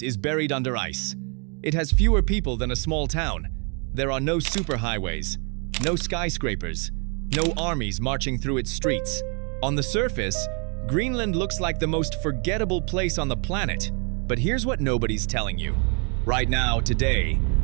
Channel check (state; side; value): quieter; left; 37.2 dB